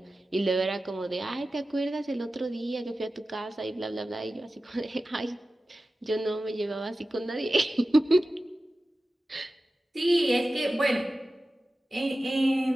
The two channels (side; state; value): both; normal; correlation 0.95